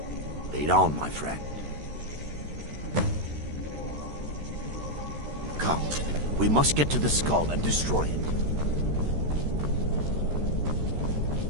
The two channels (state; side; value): late; left; 13 ms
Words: Lead on, my friend. Come, we must get to the skull and destroy it.